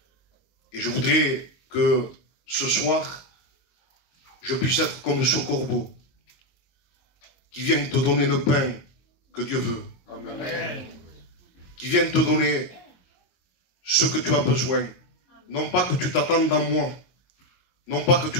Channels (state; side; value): late; right; 22 ms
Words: Et je voudrais que ce soir, je puisse être comme ce corbeau qui vient te donner le pain que Dieu veut. Amen. Qui vient te donner ce que tu as besoin. Non pas que tu t'attendes à moi, non pas que